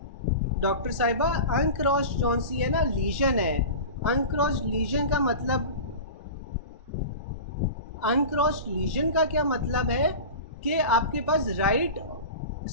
डॉक्टर साहिबा, अनक्रॉस्ड जौन सी है ना लीजन है, अनक्रॉस्ड लीजन का मतलब, अनक्रॉस्ड लीजन का क्या मतलब है कि आपके पास राइट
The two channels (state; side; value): inverted; both; correlation -0.31